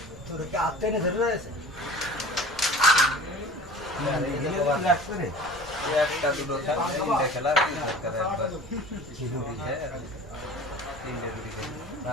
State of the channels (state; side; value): normal; both; correlation 0.41